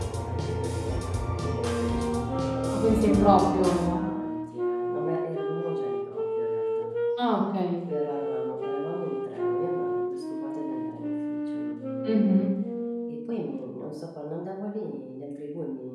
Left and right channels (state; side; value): identical; both; correlation 1.00